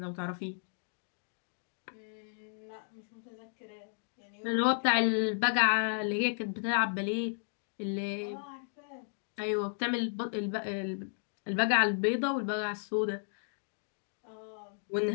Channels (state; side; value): silent; right; digital silence